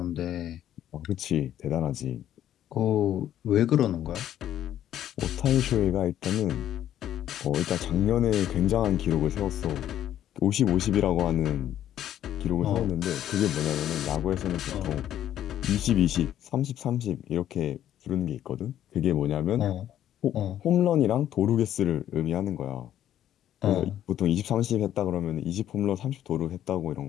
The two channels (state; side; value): quieter; right; 11.4 dB